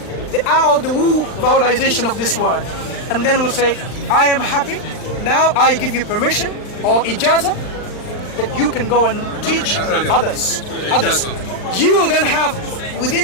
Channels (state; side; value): late; right; 39 ms